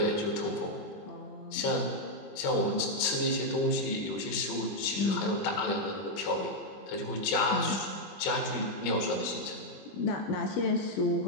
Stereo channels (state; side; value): late; right; 21 ms